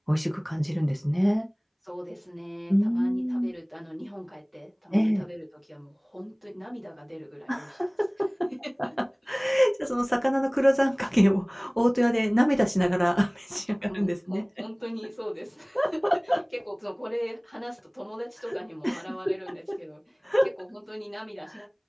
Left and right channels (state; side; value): identical; both; correlation 1.00